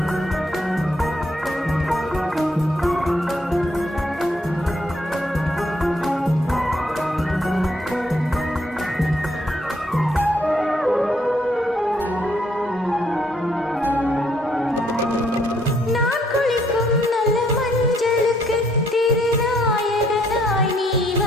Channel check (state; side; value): normal; both; correlation 0.70